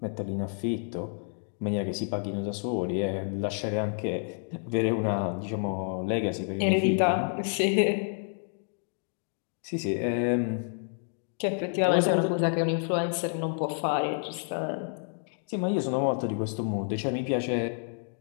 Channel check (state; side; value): silent; right; 57 dB below the other